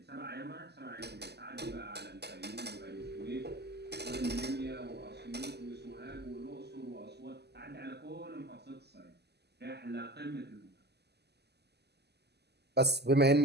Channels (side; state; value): left; late; 0.49 ms